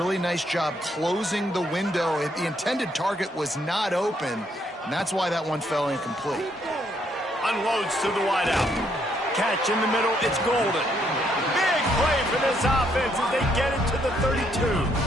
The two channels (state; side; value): normal; both; correlation 0.72